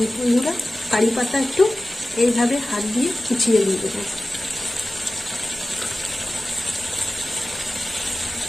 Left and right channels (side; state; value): both; normal; correlation 0.96